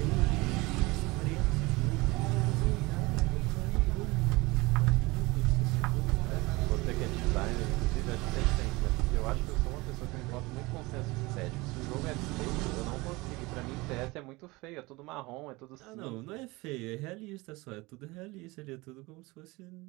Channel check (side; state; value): left; quieter; 22.9 dB